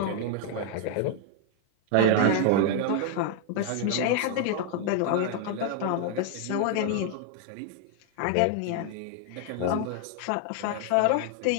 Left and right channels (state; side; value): different; both; correlation 0.00